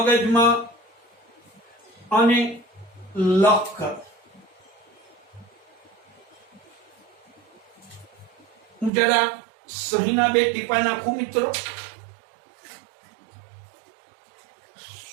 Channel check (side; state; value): left; drops out; at 8.9 s